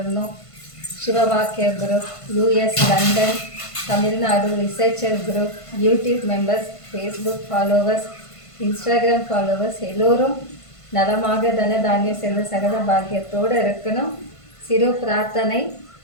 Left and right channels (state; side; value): late; right; 1.5 ms